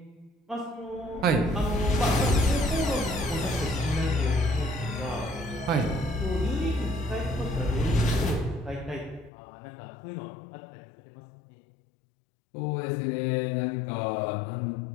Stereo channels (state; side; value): drops out; right; at 9.3 s